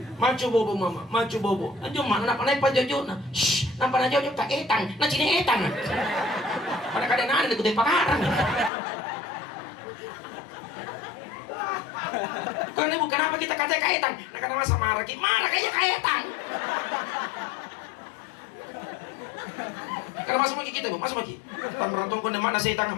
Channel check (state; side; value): drops out; right; at 8.7 s